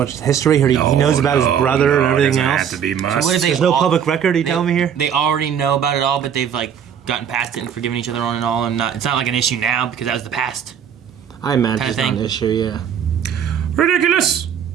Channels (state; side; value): quieter; left; 8.4 dB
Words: history. He knows about his brother and everything it doesn't else. have to be must. So what if There's no public record, you telling me here? They already know about it all, but they've like gotten past it and forgiven each other on and all, and it's not like an issue now because that was the past. I imagine Kinda it's not thing. an issue, yeah. Ridiculous!